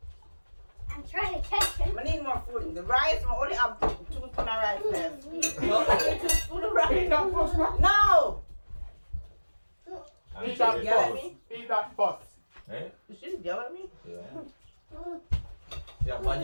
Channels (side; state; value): both; inverted; correlation -1.00